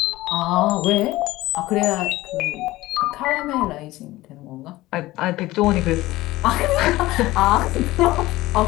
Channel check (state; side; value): quieter; right; 17.9 dB